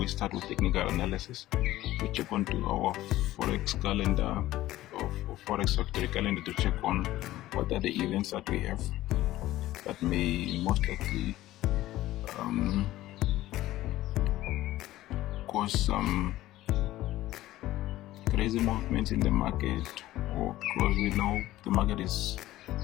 start with technical analysis. We check onto our forex calendar or forex factory calendar to check on what are the events that we have that may most likely cause some crazy movements in the market, or because we know the market is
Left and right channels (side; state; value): right; quieter; 15.5 dB